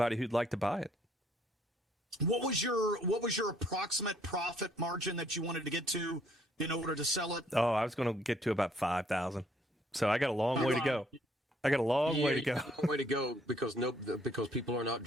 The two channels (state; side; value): normal; both; correlation 0.65